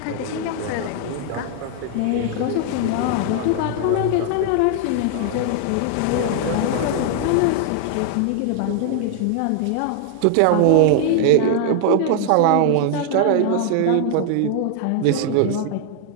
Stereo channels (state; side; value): different; both; correlation 0.00